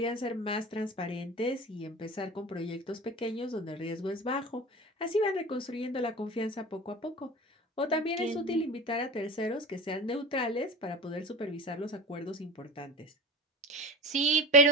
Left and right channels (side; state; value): both; normal; correlation 0.32